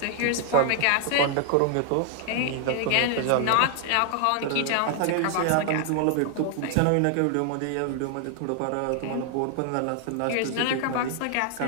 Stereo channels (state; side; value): different; both; correlation 0.00